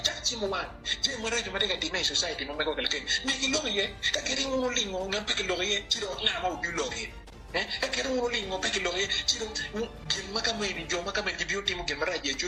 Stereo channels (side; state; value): both; identical; correlation 1.00